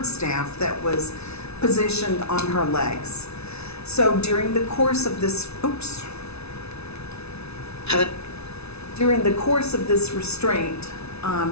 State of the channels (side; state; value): right; late; 0.80 ms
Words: staff that was positioned on her legs. So during the course of this, restraint,